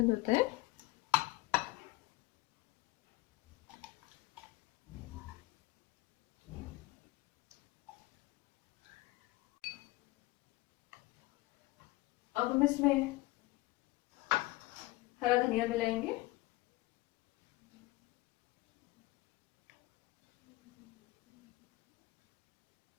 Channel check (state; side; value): quieter; right; 20.2 dB